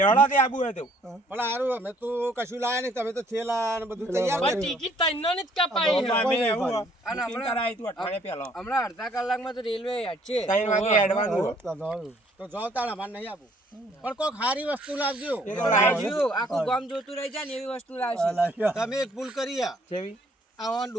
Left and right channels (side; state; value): both; normal; correlation 0.62